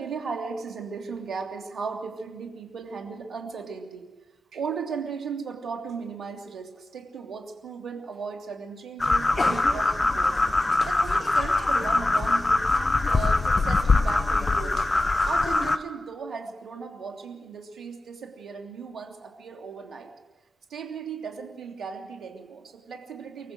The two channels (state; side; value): normal; both; correlation 0.92